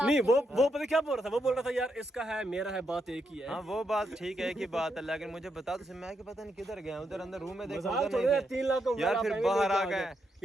नहीं वो पता क्या बोल रहा था, वो बोल रहा था यार इसका है मेरा है बात एक ही है। हाँ वो बात ठीक है, एक ही बात है, लेकिन मुझे बता तो मैं कि पता नहीं किधर गया, उधर अंदर रूम में देखा उधर नहीं थे। 3 लाख यार फिर बाहर आ गए।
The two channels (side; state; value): both; normal; correlation 0.81